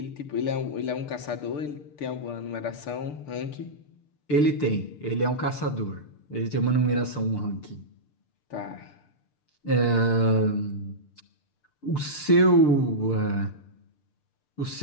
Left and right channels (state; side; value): late; right; 6.7 ms